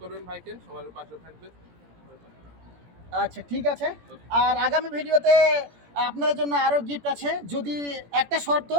করবেন ভাইকে, সবার পাশে থাকবে। আচ্ছা, ঠিক আছে। আর আগামী ভিডিওতে আপনাদের জন্য আরও গিফট আছে। যদি একটা শর্ত,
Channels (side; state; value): left; late; 17 ms